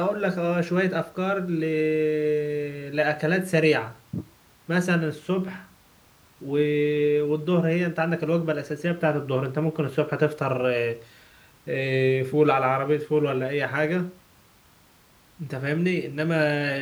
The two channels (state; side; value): identical; both; correlation 1.00